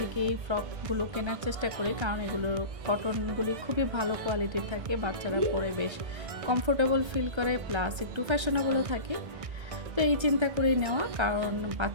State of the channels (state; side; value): late; left; 1.3 ms